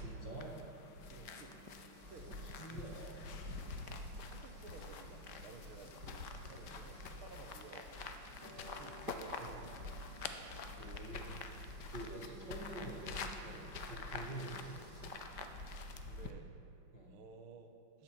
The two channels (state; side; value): late; left; 5.2 ms